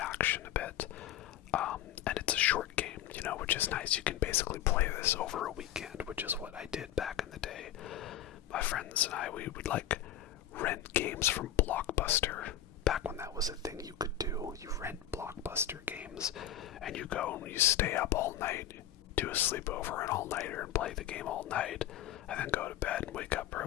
a bit. And it's a short game, you know, which is nice. You can basically play this over a weekend, which is what I did back in the day. My friends and I, we would like rent games from Blockbuster. Back when that was a thing you could do. You rent Blockbuster games and you go and you stay up all night, do a sleepover, an all-nighter, and play the game all night, and then go to bed and wake up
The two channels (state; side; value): quieter; right; 11.0 dB